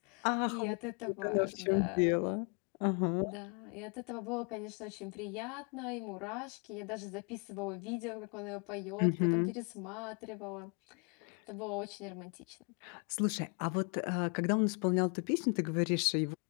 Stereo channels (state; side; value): quieter; right; 36.4 dB